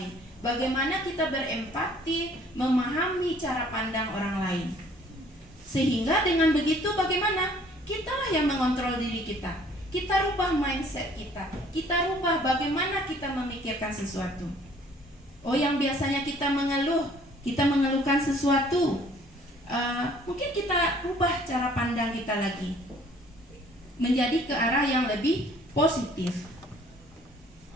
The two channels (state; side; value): normal; both; correlation 0.57